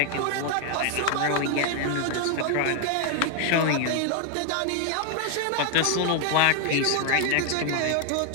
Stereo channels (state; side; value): different; both; correlation 0.00